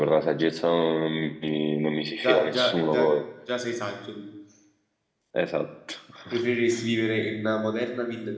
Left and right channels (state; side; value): identical; both; correlation 1.00